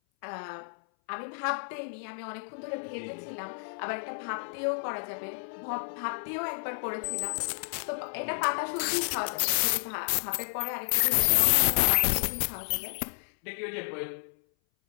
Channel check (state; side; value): silent; right; 57 dB below the other